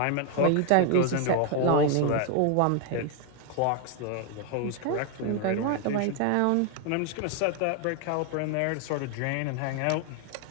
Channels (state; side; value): different; both; correlation 0.00